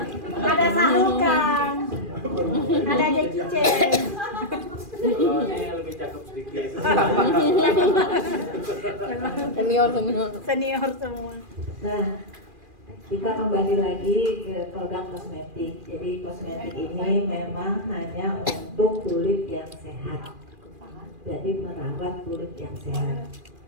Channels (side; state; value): left; late; 2.4 ms